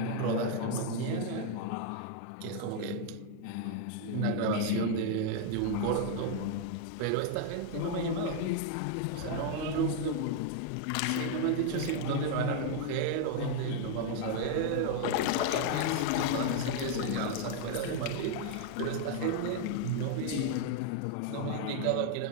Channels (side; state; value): both; different; correlation 0.00